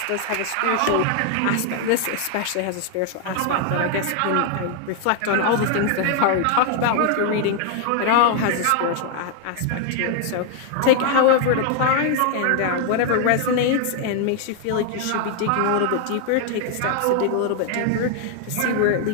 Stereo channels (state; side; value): different; both; correlation 0.00